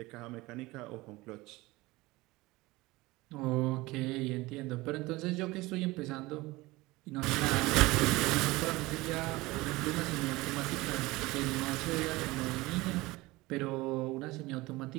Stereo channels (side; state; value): left; quieter; 20.8 dB